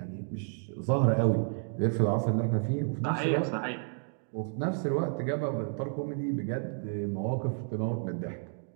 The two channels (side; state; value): left; silent; 57 dB below the other